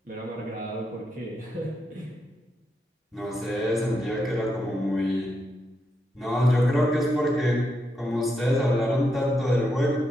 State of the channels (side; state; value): both; normal; correlation 0.82